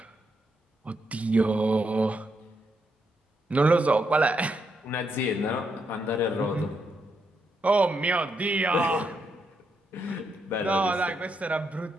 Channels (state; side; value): normal; both; correlation 0.80